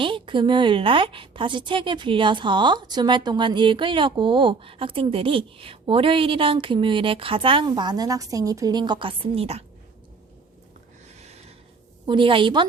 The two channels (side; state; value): left; quieter; 4.5 dB